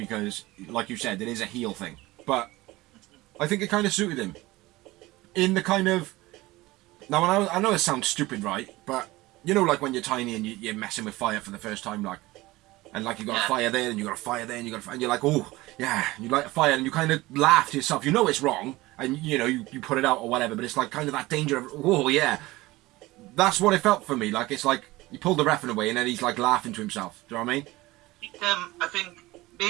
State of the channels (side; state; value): left; quieter; 19.5 dB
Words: like you said, it is a heel thing. But I think it kind of suited him. In the kind of... Now, I know it sounds stupid, right? But, you know, like when you're tiny and you're messing with fire for the first time, like... And, like, you got a fire there, and you got a fire there, and you got a fire... And you're like, oh, yeah, you light a fire, and you kind of laugh to yourself. You know it's wrong, and, you know, you put it out or whatever, but it's, like, kind of that danger of, oh, yeah. That's what it felt for me. Like, it's like, you pulled the ref away, and then he's, like, laughing to himself. Do you know what I mean? I think